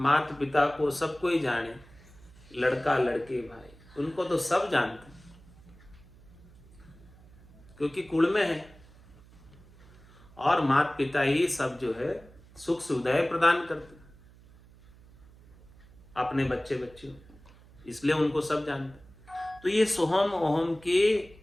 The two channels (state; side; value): noise; right; hum, 24 dB below the sound